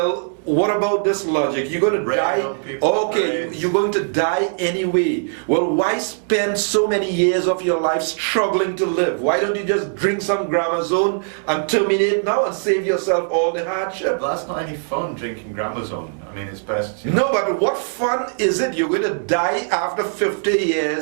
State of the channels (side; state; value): left; silent; 62 dB below the other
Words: what about this logic? You're going to die. Okay, you're going to die anyway. Well, why spend so many years of your life struggling to live? Why don't you just drink some Gramazone and terminate now and save yourself all the hardship? Well, that's not any fun, drinking Gramazone. I mean, it's best... No, but what fun is it? You're going to die after 50